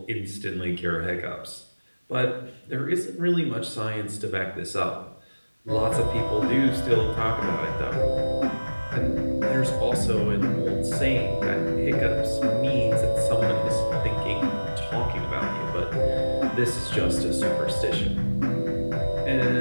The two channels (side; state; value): both; inverted; correlation -1.00